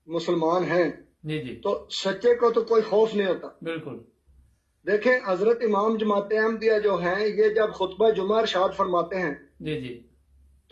مسلمان ہیں جی جی تو سچے کو تو کوئی خوف نہیں ہوتا. بالکل. دیکھیں حضرت امام جماعت احمدیہ جو ہیں یہ جب خطبہ جمعہ ارشاد فرماتے ہیں جی جی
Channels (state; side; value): identical; both; correlation 1.00